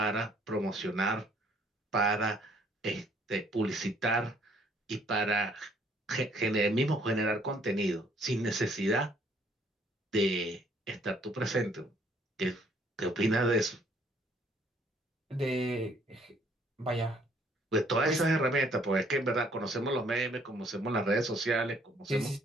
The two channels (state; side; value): normal; both; correlation 0.63